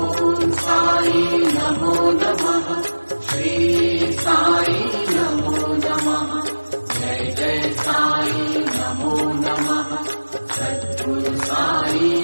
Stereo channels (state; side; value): inverted; both; correlation -1.00